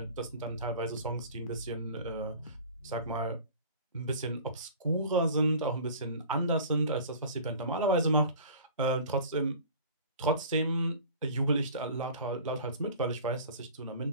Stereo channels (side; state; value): both; inverted; correlation -0.42